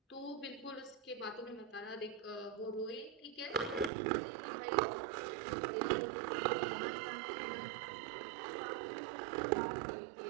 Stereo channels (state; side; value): drops out; left; at 3.9 s